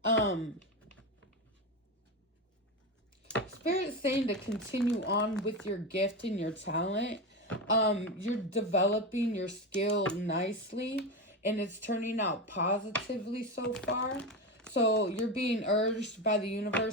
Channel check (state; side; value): normal; both; correlation 0.18